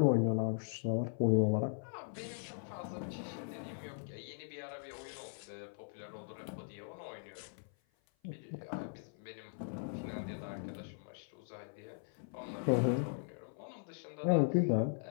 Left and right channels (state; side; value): silent; right; 52 dB below the other